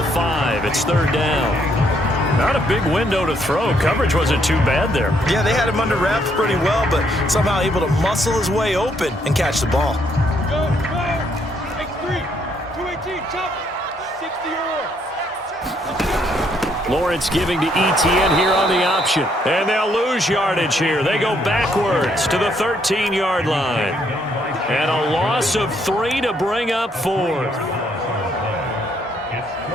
5. It's 3rd down. Not a big window to throw. Coverage wasn't too bad there. Yeah, they had him under wraps pretty well, but somehow able to muscle his way open and catch the ball. Go, go. X3. 218. Chop. 60 or more. Lawrence giving to Etienne here on the option. And they'll lose yardage here. They go backwards to the 13-yard line. And a loss of 3 to bring up 4th.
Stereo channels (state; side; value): normal; both; correlation 0.71